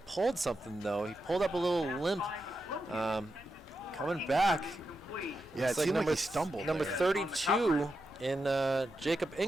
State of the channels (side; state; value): both; normal; correlation 0.87